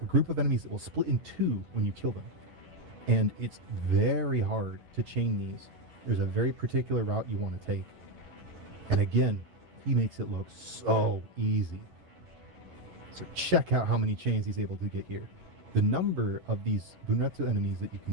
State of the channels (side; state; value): left; late; 11 ms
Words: group of enemies that will split in two when you kill them. And it's very hard to chain these. There's a very particular route you want to take. And again, he makes it look so easy. So check out how many chains he's able to get here. The number of these Bunretsu enemies that you